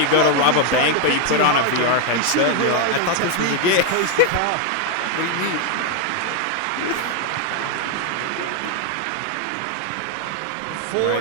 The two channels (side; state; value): both; different; correlation 0.01